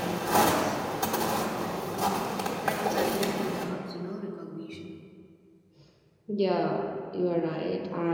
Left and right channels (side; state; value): both; identical; correlation 1.00